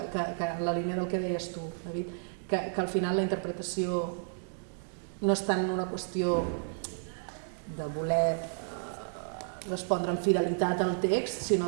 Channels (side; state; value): left; silent; digital silence